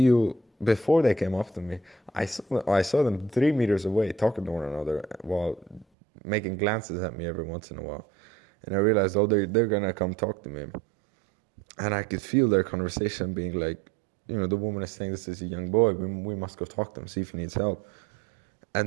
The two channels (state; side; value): drops out; left; at 5.9 s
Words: before they came up to me, I saw them 3 meters away talking to one another while making glances at me every once in a while. And I realized, they're going to come talk to me. And I could feel their conversation being like, you know, the woman is saying, this is a young boy. We must go talk to him, see if he needs help.